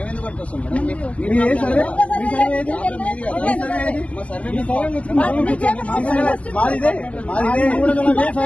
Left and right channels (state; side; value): late; right; 0.064 ms